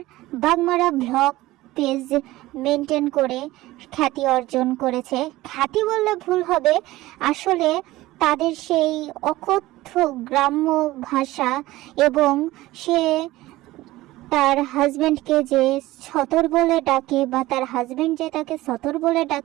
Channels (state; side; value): quieter; left; 17.7 dB